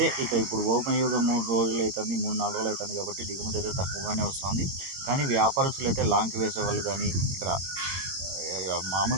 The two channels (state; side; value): late; left; 22 ms